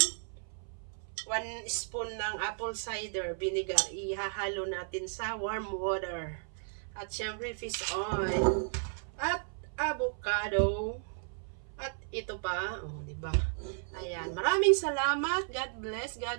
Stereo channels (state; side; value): silent; left; 55 dB below the other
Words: 1 spoon ng apple cider vinegar, ihahalo natin sa warm water. At syempre, fish oil. At avocado. At ito pa, di ba? Ayan, maraming salamat. God bless